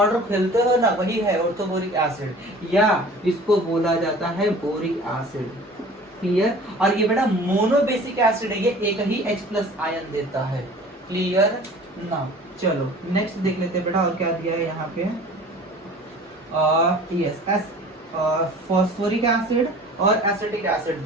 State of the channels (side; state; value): both; normal; correlation 0.45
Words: खेलते हो ना, वही है ऑर्थोबोरिक एसिड, या इसको बोला जाता है बोरिक एसिड। क्लियर, और ये बेटा मोनोबेसिक एसिड है, ये एक ही H+ आयन देता है। क्लियर ना। चलो नेक्स्ट देख लेते हैं बेटा, और क्या दिया है यहाँ पे, यस फॉस्फोरिक एसिड और एसिटिक एसिड